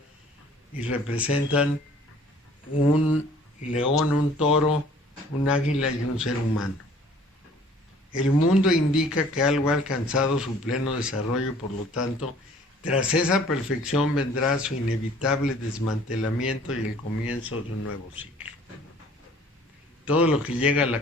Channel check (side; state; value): both; normal; correlation 0.53